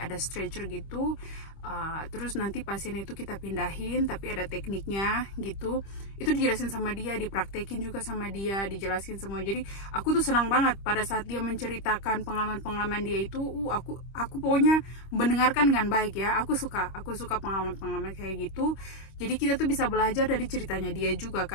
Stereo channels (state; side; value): late; right; 25 ms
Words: ada stretcher gitu, terus nanti pasien itu kita pindahin, tapi ada tekniknya gitu. Itu dijelasin sama dia, dipraktekin juga sama dia, dijelasin semua. Jadi aku tuh senang banget pada saat dia menceritakan pengalaman-pengalaman dia itu. Aku pokoknya mendengarkan dengan baik ya. Aku suka pengalaman-pengalaman kayak gitu. Jadi kita tuh bisa belajar dari ceritanya dia juga